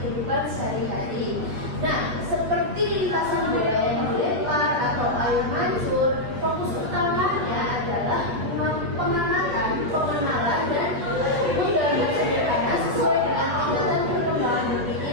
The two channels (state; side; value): late; left; 8.3 ms